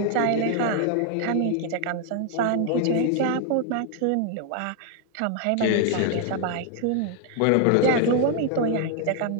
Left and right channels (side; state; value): both; different; correlation 0.00